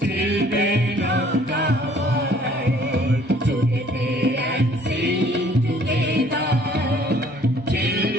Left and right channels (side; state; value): both; normal; correlation 0.57